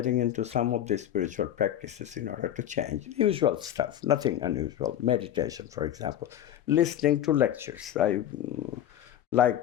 into some of the spiritual practices in order to change. Usual stuff, nothing unusual. Meditation, for example. Listening to lectures. I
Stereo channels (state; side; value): quieter; right; 11.2 dB